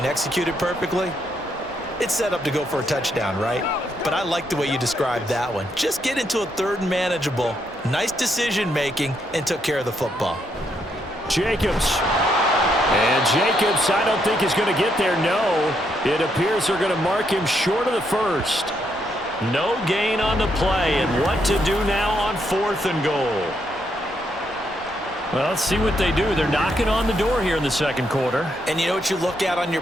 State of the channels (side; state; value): both; normal; correlation 0.77